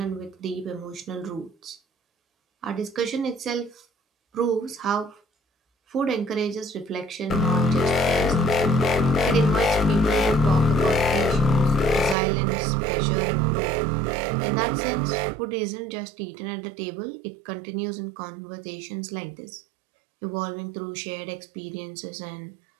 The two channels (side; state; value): left; drops out; at 12.2 s